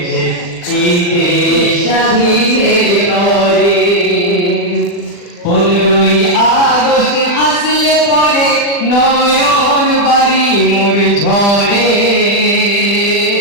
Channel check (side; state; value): right; late; 40 ms